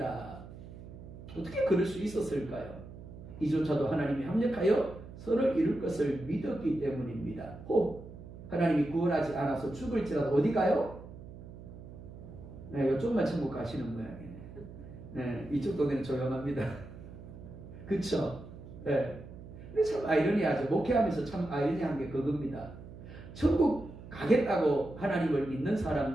어떻게 그럴 수 있었을까요? 이조차도 하나님이 합력하여 선을 이룰 것을 믿었기 때문입니다. 혹 하나님이 구원하지 않아서 죽을지라도 어디 가요? 네, 이쪽만 천국 가시는 모양이네. 네, 이쪽 동네는 조용합니다. 그쵸? 네. 근데 참 아이러니하죠. 목회하면서 참 아이러니한 게 그겁니다. 천국 가겠다고 하나님을 믿는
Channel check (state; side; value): noise; right; hum, 15 dB below the sound